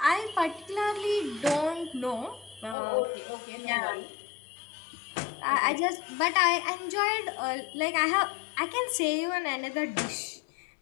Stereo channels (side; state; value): right; drops out; at 2.8 s